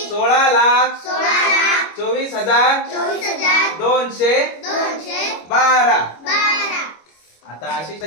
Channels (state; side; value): late; right; 25 ms